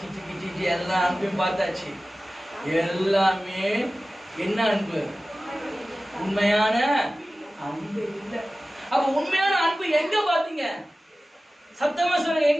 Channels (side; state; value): both; normal; correlation 0.96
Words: சிக்கி சிச்சி எல்லா அன்பையும் பார்த்தாச்சு. எல்லாமே என்ன அன்பு? உண்மையான அன்பு இல்லை. அப்ப உண்மையான அன்பு எங்க பாத்தீங்க? சத்தமா சொல்லுங்க,